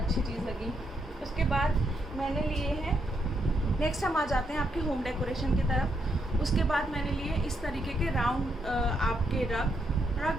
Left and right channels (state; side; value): normal; both; correlation 0.78